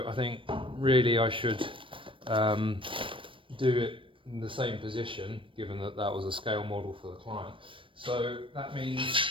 I think really I should do it in the same position, given that that was a scale model for the client. So that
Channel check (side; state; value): left; late; 0.25 ms